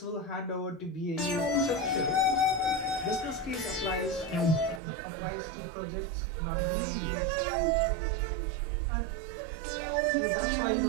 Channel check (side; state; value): left; drops out; at 4.8 s